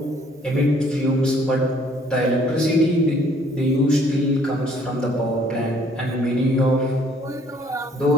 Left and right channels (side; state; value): both; normal; correlation 0.61